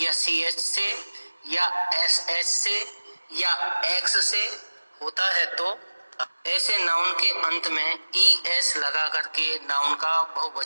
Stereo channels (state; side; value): inverted; both; correlation -1.00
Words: या CH से या SH से या X से होता है, तो ऐसे नाउन के अंत में ES लगा करके नाउन का